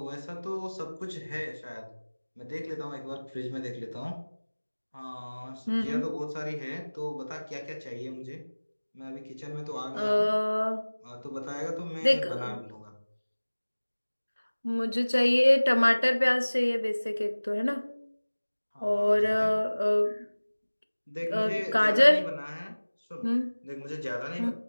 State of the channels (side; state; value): both; inverted; correlation -1.00